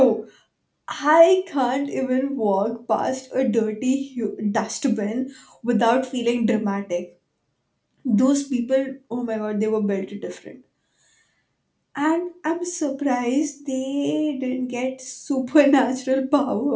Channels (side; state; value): both; identical; correlation 1.00